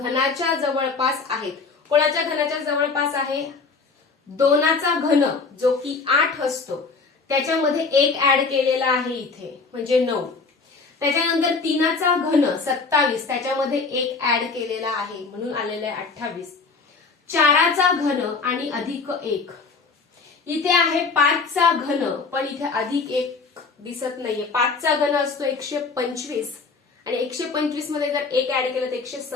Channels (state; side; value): quieter; right; 4.5 dB